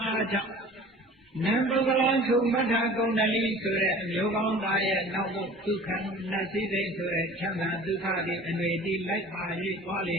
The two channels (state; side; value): normal; both; correlation 0.44